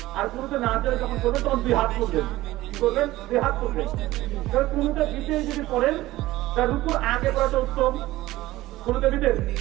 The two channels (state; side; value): quieter; left; 17.0 dB